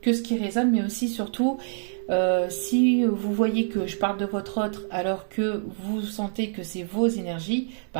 ce qui résonne, mais aussi surtout si vous voyez que je parle de votre autre alors que vous sentez que c'est vos énergies,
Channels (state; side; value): silent; left; 61 dB below the other